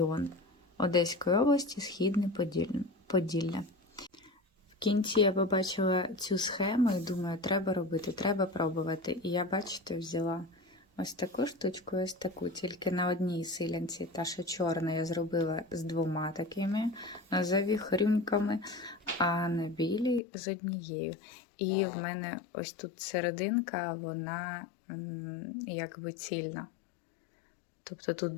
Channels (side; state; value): right; drops out; at 20.2 s